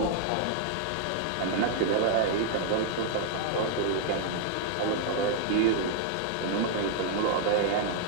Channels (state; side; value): different; both; correlation -0.01